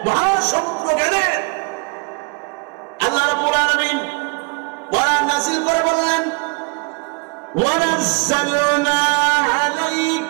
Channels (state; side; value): quieter; left; 31.5 dB